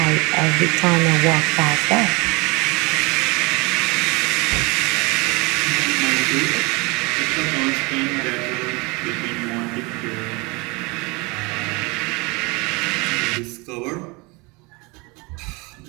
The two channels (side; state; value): left; quieter; 26.8 dB